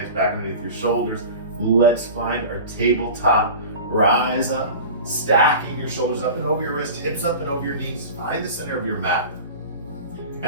back underneath your shoulders. Let's find our tabletop. Rise up, stacking your shoulders up and over your wrists, hips up and over your knees. Find the center of your mat.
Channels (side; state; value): both; inverted; correlation -0.35